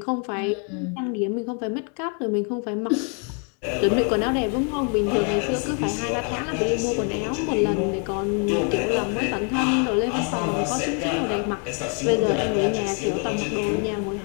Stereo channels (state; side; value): quieter; right; 39.7 dB